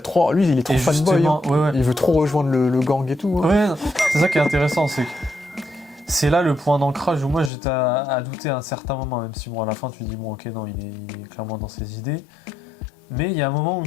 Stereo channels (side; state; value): right; drops out; at 7.5 s